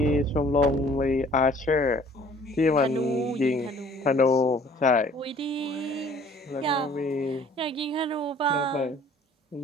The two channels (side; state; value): both; normal; correlation 0.54